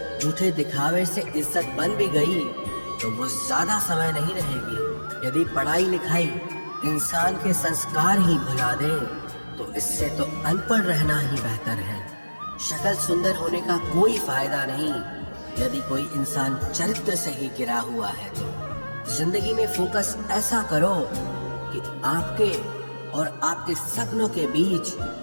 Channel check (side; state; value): both; inverted; correlation -1.00